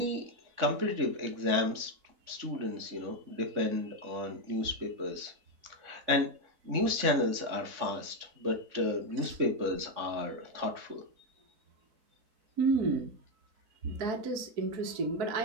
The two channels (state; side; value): late; left; 3.6 ms